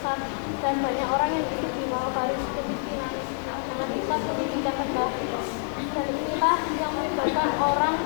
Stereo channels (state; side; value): silent; right; 55 dB below the other